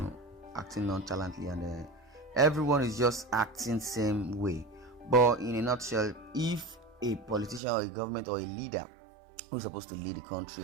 acting nonchalantly, and everyone is just acting same way. But in a nutshell, if a politician or a government or a leader who's supposed to lead the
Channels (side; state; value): left; drops out; at 7.6 s